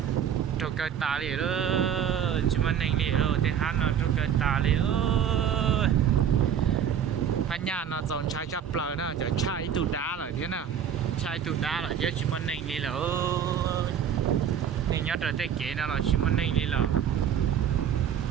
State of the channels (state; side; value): quieter; left; 8.6 dB